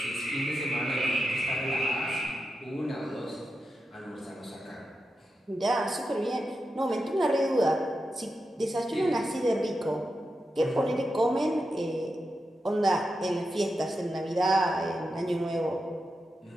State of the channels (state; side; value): normal; both; correlation 0.88